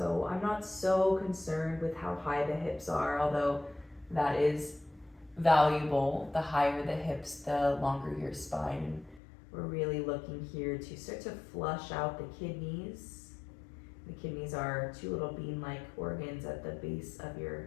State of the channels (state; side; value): drops out; right; at 9.2 s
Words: I'm not so concerned with how high the hips are, although that is valuable. The higher the hips, the longer your spine. And we're really looking here to start to flush out the kidneys. The kidneys are 2 little bean-like organs at the base of